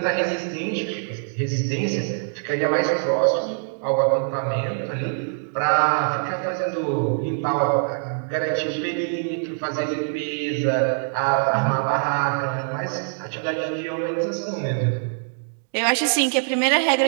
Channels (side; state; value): left; silent; digital silence